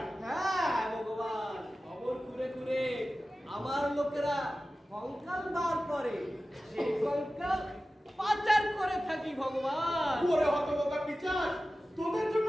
হ্যাঁ ভগবান, খবর ঘুরে ঘুরে আমার লোকেরা কঙ্কাল বার করে, সেই কঙ্কাল পাচার করে থাকি ভগবান। ওরে হতবোকা পিচাস, তোদের জন্য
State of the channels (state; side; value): normal; both; correlation 0.95